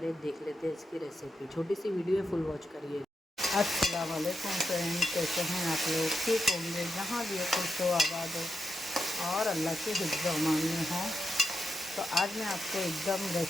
देख लेते हैं इसकी रेसिपी। छोटी सी वीडियो है, फुल वॉच करिए। अस्सलाम वालेकुम फ्रेंड, कैसे हैं आप लोग? ठीक होंगे, जहाँ भी हो खुश हो, आबाद हो और अल्लाह के हिफ्ज़ अमान में हों। तो आज मैं आपको एकदम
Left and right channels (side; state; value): both; normal; correlation 0.86